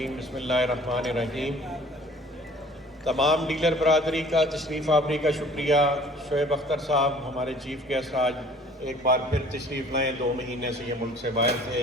بسم اللہ الرحمن الرحیم۔ تمام ڈیلر برادری کا تشریف آوری کا شکریہ۔ شعیب اختر صاحب ہمارے چیف گیسٹ آج ایک بار پھر تشریف لائیں، 2 مہینے سے یہ ملک سے باہر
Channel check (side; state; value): both; normal; correlation 0.51